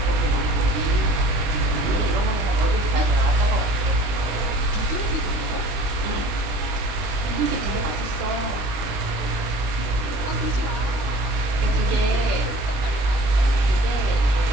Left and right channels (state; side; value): late; left; 20 ms